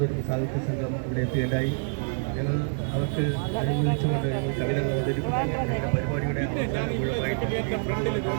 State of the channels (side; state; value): left; silent; 56 dB below the other